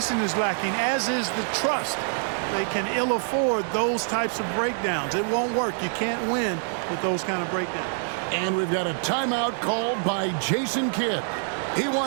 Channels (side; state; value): left; silent; digital silence